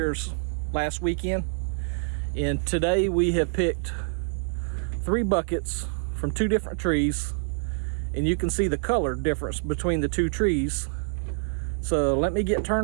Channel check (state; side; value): silent; left; digital silence